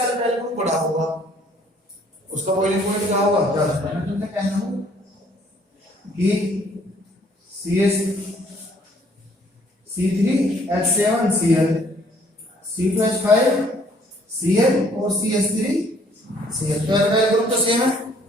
एल्काइल ग्रुप बड़ा होगा उसका बॉइलिंग पॉइंट क्या होगा? ज्यादा। मैं तुमसे कहना हूं कि C3H7Cl, C2H5Cl और CH3Cl, तो एल्काइल ग्रुप तो सेम है।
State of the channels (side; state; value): both; normal; correlation 0.61